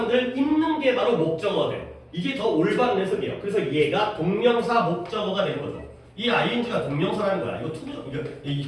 입는 게 바로 목적어가 돼요. 이게 더 올바른 해석이에요. 그래서 얘가 동명사 목적어가 되는 거죠. 이 ing가 동명사라는 거야. 이거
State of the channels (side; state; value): both; identical; correlation 1.00